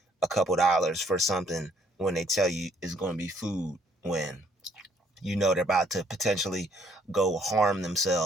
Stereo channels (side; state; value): both; normal; correlation 0.65